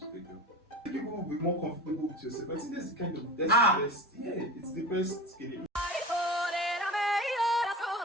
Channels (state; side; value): normal; both; correlation 0.31